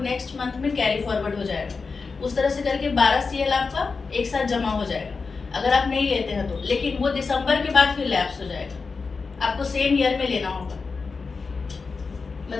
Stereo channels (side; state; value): right; quieter; 4.6 dB